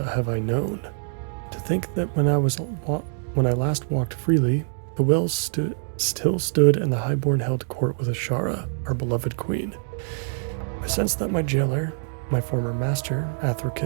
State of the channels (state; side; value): silent; left; digital silence